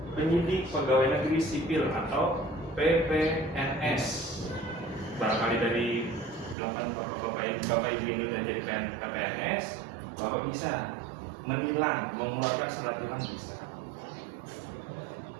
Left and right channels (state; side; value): drops out; left; at 6.6 s